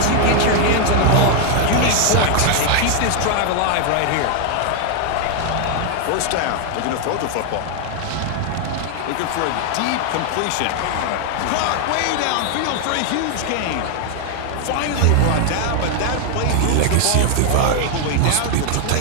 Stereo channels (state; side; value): different; both; correlation 0.00